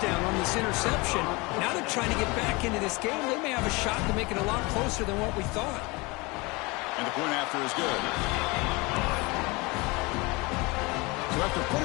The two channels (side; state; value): right; quieter; 25.3 dB